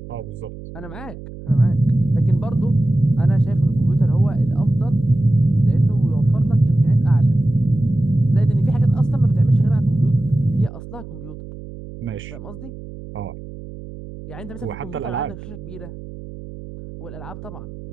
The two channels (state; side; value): noise; right; hum, 14 dB below the sound